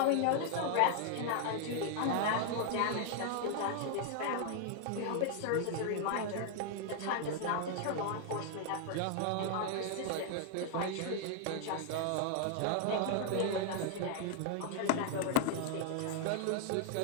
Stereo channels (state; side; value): different; both; correlation 0.00